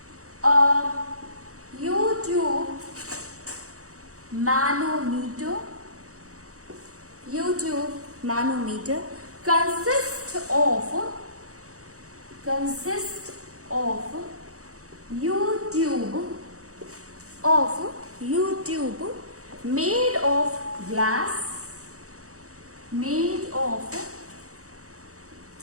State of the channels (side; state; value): left; late; 0.65 ms